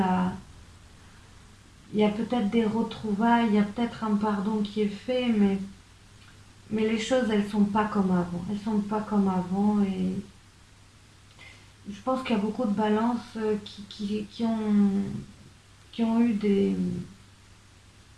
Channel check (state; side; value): identical; both; correlation 1.00